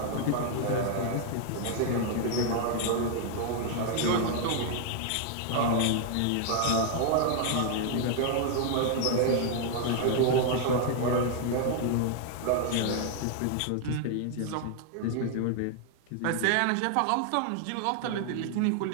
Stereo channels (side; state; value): both; different; correlation 0.00